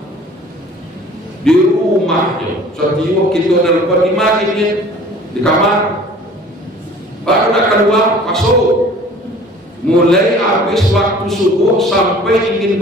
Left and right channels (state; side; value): normal; both; correlation 0.48